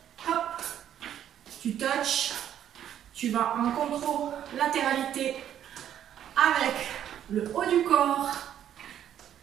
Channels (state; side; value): quieter; left; 10.4 dB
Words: Hop, tu touches. Tu vas en contrôle-latéralité avec le haut du corps.